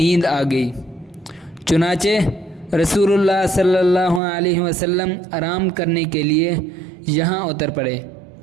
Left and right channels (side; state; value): left; drops out; at 4.2 s